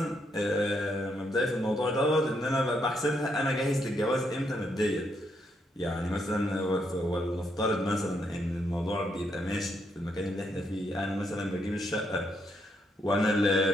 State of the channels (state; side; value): normal; both; correlation 0.77